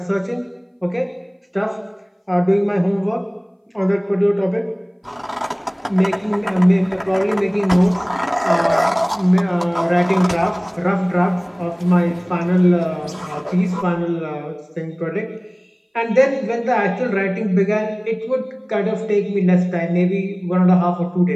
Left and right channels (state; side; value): identical; both; correlation 1.00